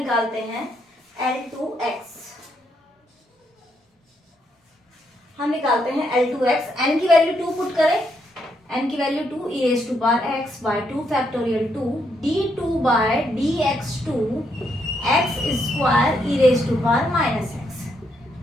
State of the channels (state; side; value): normal; both; correlation 0.77